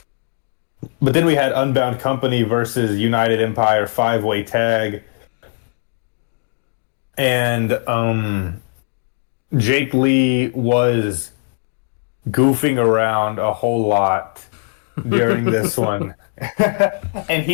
then we had Unbound Company versus United Empire 5-way tag. And Jake Lee was goofing around a whole lot during this one.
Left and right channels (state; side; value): silent; right; 64 dB below the other